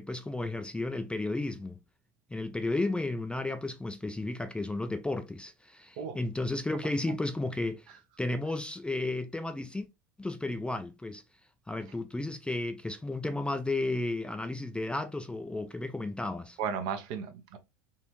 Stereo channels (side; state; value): both; normal; correlation 0.85